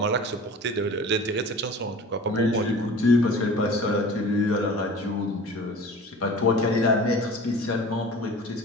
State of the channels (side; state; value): both; normal; correlation 0.41